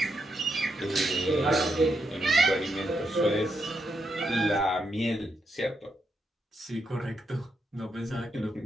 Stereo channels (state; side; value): normal; both; correlation 0.82